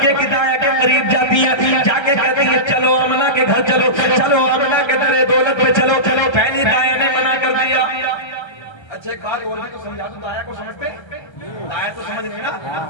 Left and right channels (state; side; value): late; right; 1.3 ms